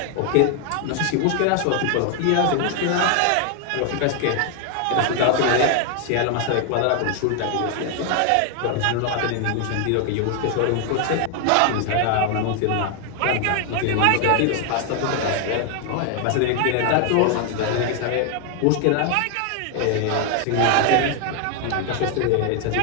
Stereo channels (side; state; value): both; different; correlation 0.00